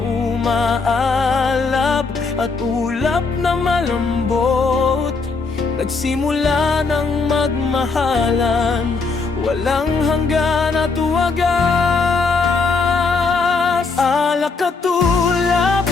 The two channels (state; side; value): quieter; right; 4.4 dB